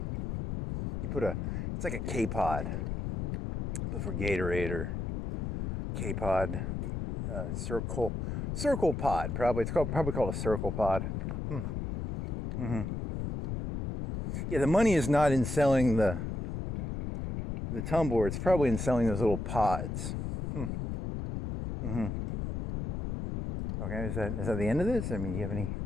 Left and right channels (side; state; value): left; noise; rumble, 3 dB below the sound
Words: put it's like a K-pod, but for Gatorade or K-pod, circle pod. Probably it's probably called a circle pod. Yeah, the money is not in selling the tumbler. It's probably in selling those little pods. Okay, is that the end of this? I mean, do you have any